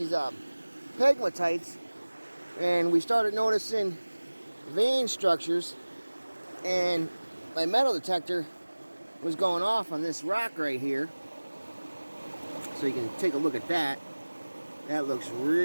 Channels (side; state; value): both; inverted; correlation -1.00